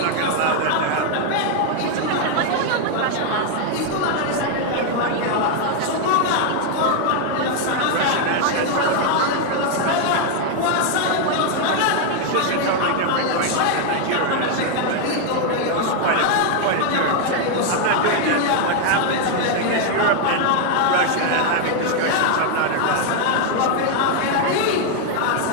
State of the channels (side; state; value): both; different; correlation 0.00